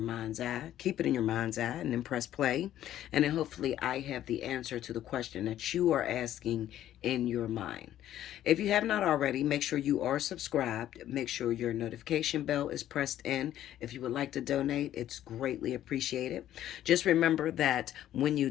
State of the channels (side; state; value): right; quieter; 12.2 dB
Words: mind's eye. Keep it in your mind's eye and then press play. And then hopefully I have the answer to the question that you are asking in your mind. If you have not already, make sure you are subscribed. Make sure your notification bell is pressed in. If you would like to donate, it's greatly appreciated. Just remember that when you